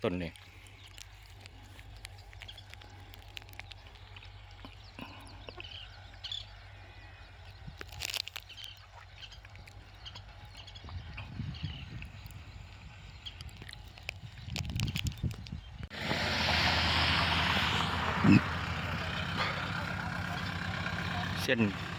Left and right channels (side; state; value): both; identical; correlation 1.00